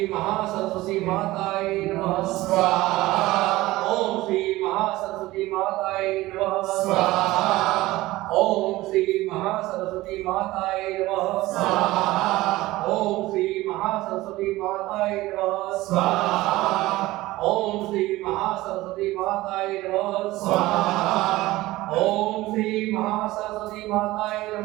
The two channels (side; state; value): left; quieter; 18.1 dB